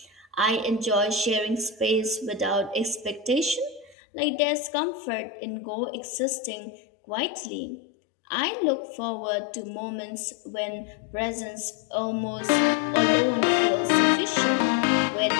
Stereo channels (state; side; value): drops out; right; at 4.0 s